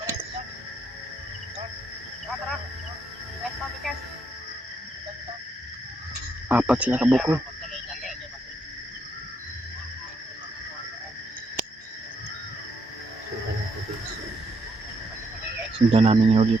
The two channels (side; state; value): both; normal; correlation 0.76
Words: Apat sila kabukol. Sundan namin yung